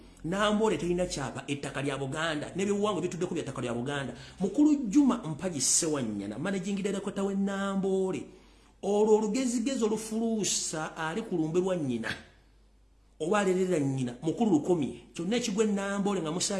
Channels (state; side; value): identical; both; correlation 1.00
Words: Nambole terina kyapa ettaka lya Buganda n'ebyobuwangwa bituddeko bya ttaka lya Buganda mukulu Juma Mpaji Sewanyana managing director we Nambole olwo olugezigezo olufuluusa ali ku lumbe lwa nnyina oba alerera nnyina mukulu lukomye kyonna ekigwe Nambole nga